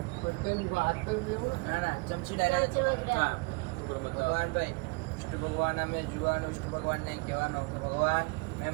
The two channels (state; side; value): quieter; left; 29.4 dB